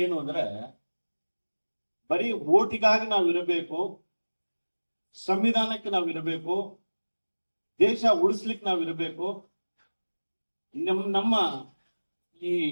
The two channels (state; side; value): inverted; both; correlation -1.00